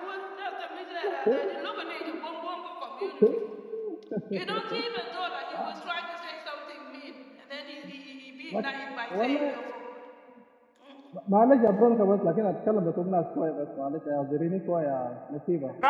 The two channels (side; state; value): both; identical; correlation 1.00